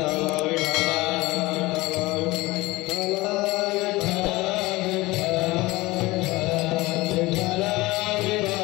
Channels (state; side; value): quieter; right; 20.7 dB